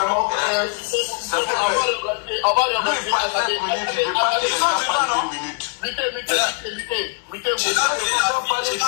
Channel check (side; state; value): right; quieter; 39.9 dB